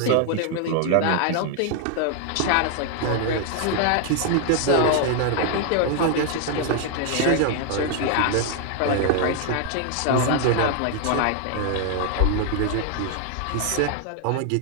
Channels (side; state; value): both; different; correlation 0.00